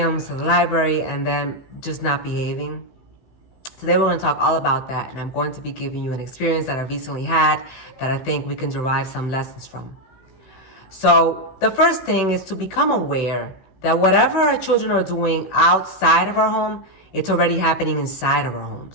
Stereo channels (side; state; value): right; late; 16 ms